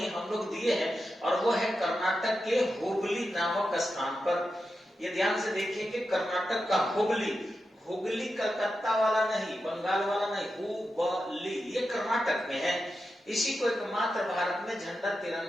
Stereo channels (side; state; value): both; normal; correlation 0.89